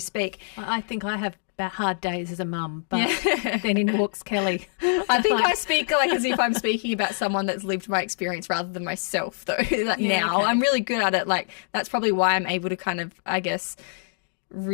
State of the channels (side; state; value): right; silent; digital silence